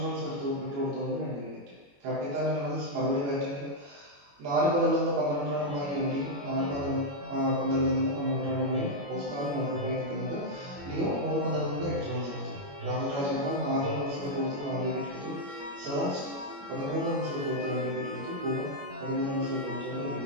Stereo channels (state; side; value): late; left; 21 ms